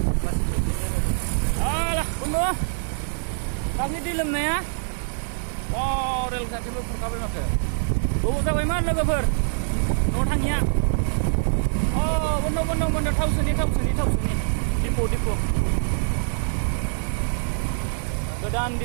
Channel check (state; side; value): silent; left; digital silence